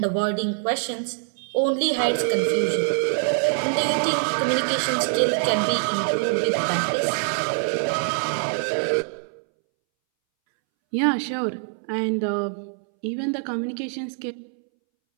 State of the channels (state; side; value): silent; left; 62 dB below the other